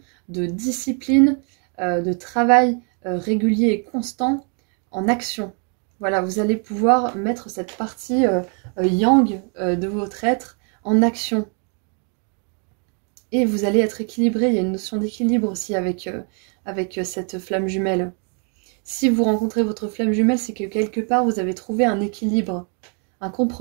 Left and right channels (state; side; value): quieter; left; 39.8 dB